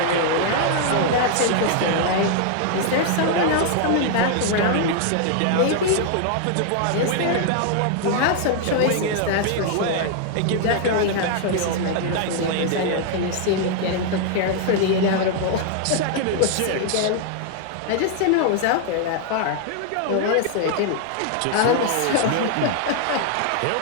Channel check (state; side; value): different; both; correlation 0.00